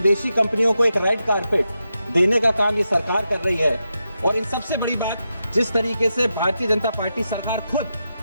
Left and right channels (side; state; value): both; inverted; correlation -0.87